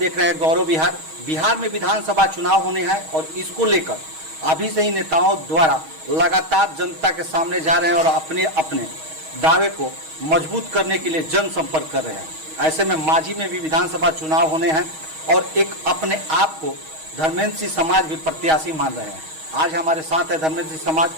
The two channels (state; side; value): late; left; 6.3 ms